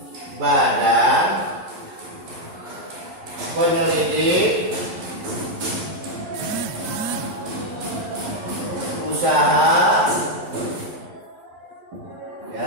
Badan Penyelidik Usaha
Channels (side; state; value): left; late; 11 ms